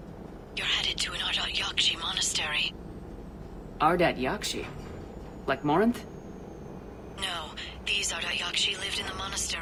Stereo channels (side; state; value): both; identical; correlation 1.00